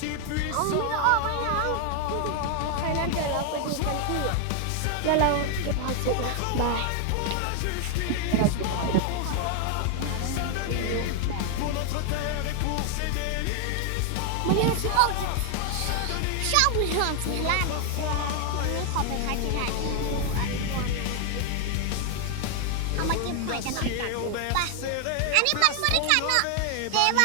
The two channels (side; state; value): both; different; correlation 0.00